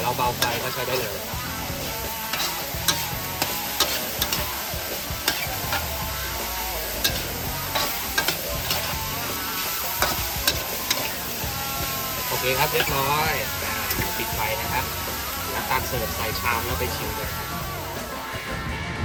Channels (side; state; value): both; identical; correlation 1.00